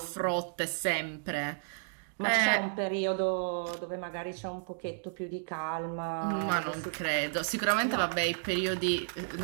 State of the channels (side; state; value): left; silent; digital silence